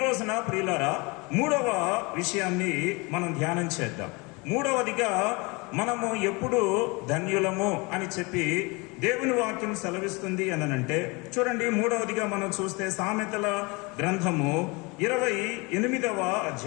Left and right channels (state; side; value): quieter; right; 27.1 dB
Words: రోజున ప్రియులారా మూడవ విషయాన్ని మనం ధ్యానం చేద్దాం. మూడవదిగా మనము ఎప్పుడు ధన్యులము అని చెప్పి దేవుని వాక్యం సెలవిస్తుంది అనంటే, చూడండి, మూడవదిగా మనం చూస్తే సామెతల గ్రంథము 28వ